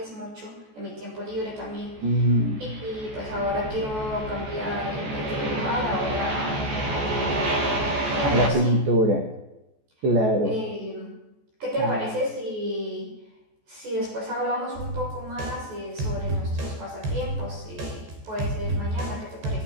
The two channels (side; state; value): left; late; 14 ms